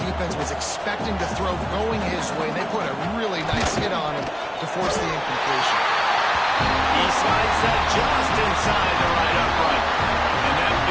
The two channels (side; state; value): both; identical; correlation 1.00